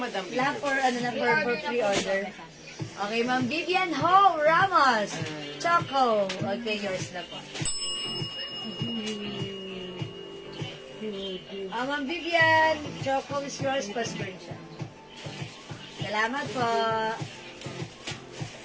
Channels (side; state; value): both; identical; correlation 1.00